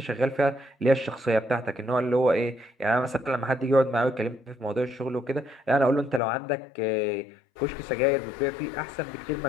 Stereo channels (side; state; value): right; drops out; at 6.2 s